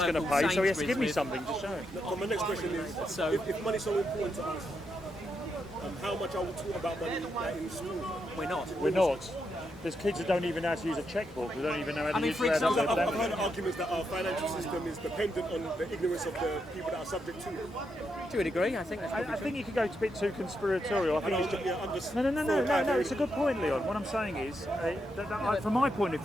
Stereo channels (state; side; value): normal; both; correlation 0.82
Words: going local to pay, so he has to Sainsbury's give me with- something to show. So my next question is, So- if money's so important to us, how much are we taught about money like, in school? We're not. We're not. There's kids that don't even know how to use a checkbook. They don't even know how to I mean, use for how to example, I've heard arguments that our financial system is dependent on the ignorance of the people that are subject to it. To a degree, I think that's probably I true. think you could go a bit too conspiratorial. I think it's just, I'm just no. It's a good point, Leon. What I'm saying is, from my point of